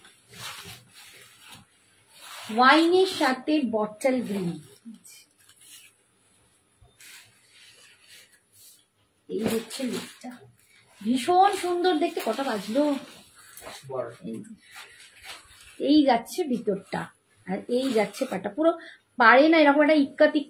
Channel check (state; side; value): identical; both; correlation 1.00